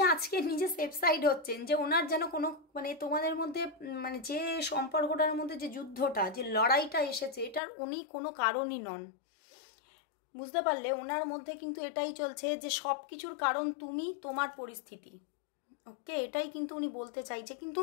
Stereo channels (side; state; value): right; drops out; at 7.6 s